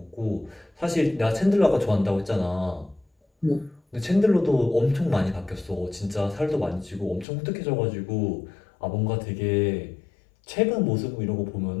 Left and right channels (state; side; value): drops out; right; at 7.2 s